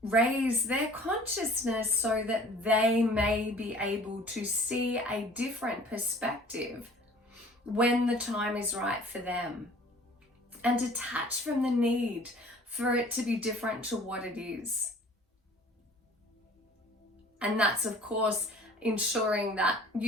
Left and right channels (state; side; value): normal; both; correlation 0.50